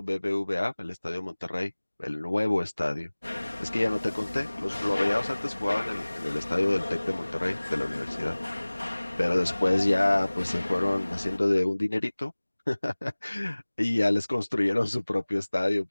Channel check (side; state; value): both; inverted; correlation -1.00